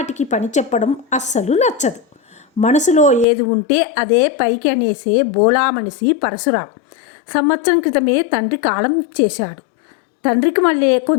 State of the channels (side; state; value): right; drops out; at 3.2 s